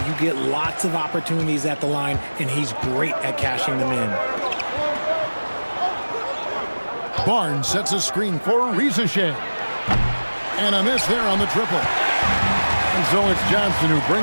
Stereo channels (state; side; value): inverted; both; correlation -1.00